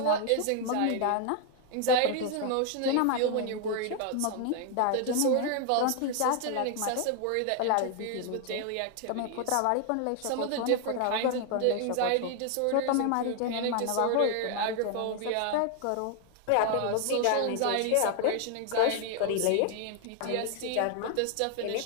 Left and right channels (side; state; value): both; different; correlation 0.00